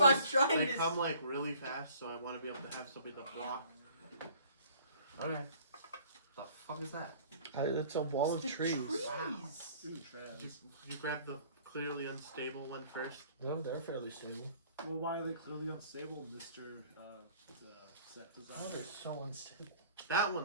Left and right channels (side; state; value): both; inverted; correlation -0.55